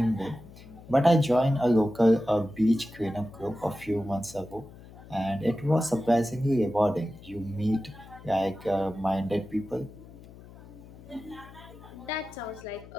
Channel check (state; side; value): noise; left; hum, 19 dB below the sound